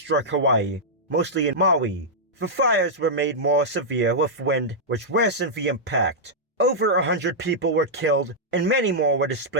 Hawaii, mostly in Maui. The fires were made more severe with wind, which worsened the impact. Over 100 people were killed, and many more were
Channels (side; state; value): both; normal; correlation -0.08